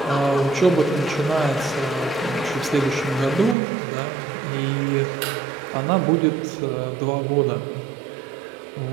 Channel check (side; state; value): left; drops out; at 3.6 s